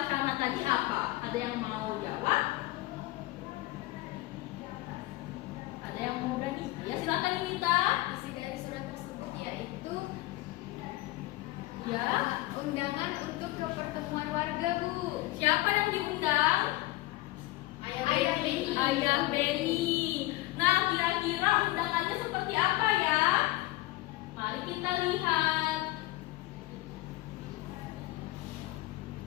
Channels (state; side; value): quieter; right; 18.7 dB